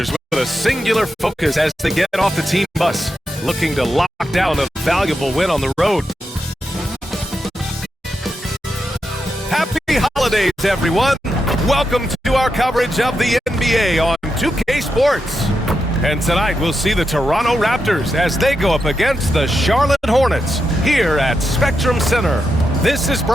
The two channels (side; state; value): both; normal; correlation 0.86